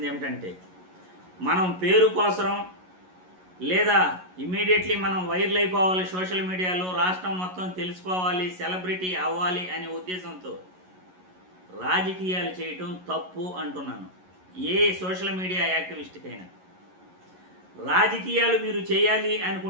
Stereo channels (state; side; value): late; left; 11 ms